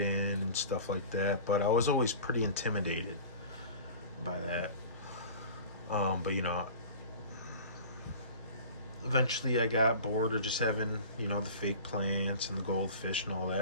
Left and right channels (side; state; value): both; inverted; correlation -0.39